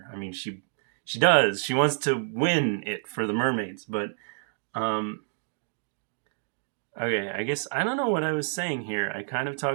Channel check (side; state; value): left; silent; digital silence